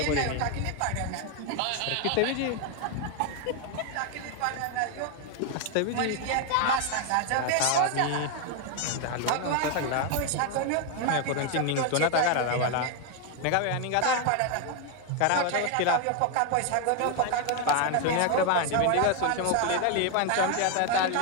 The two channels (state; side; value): different; both; correlation 0.01